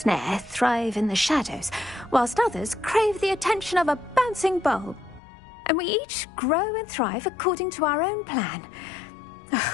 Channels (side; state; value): right; drops out; at 5.2 s